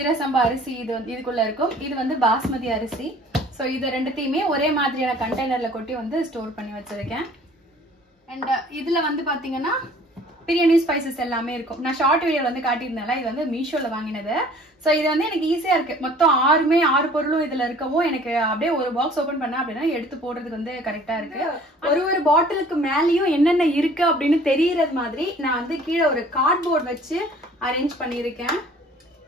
அரிசி இது வந்து இதுக்குள்ள இருக்கும். இது வந்து பாஸ்மதி அரிசி. ஸோ இது ரெண்டுத்தையுமே ஒரே மாதிரியான கண்டெய்னர்ல கொட்டி வந்து ஸ்டோர் பண்ணி வச்சிருக்கேன். அண்ட் இதுல வந்து பாத்தீங்கன்னா பிரியாணி ஸ்பைசஸ் எல்லாமே இருக்கும். நான் ஷார்ட் வீடியோல வந்து காட்டியிருந்தேன்ல, இது வந்து மீஷோல வாங்கினது. சோ இது வந்து எனக்கு ஈஸியா இருக்கு. மொத்தம் 6 பொருளும் இதுல இருக்கவும் எனக்கு அப்படியே ஒரு பாக்ஸ் ஓபன் பண்ணா அப்படின்னா எடுத்து போடுறதுக்கு வந்து கரெக்டா இருக்கு. ஒரு பாட்டிலுக்கு மேலயும் என்னென்ன இருக்கு அப்படின்னு தெரியறது மாதிரி நான் வந்து கீழே ஒரு கார்ட்போர்ட் வச்சு அரேஞ்ச் பண்ணிருக்கேன்.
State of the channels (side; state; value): both; normal; correlation 0.51